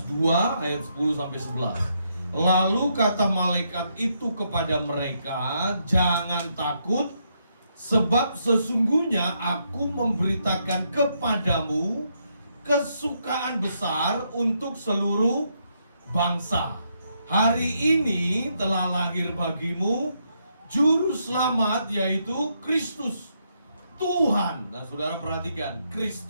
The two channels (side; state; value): both; inverted; correlation -0.77